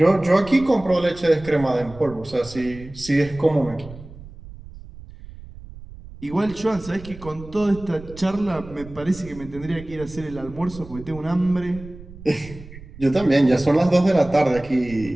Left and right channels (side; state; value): right; noise; rumble, 17 dB below the sound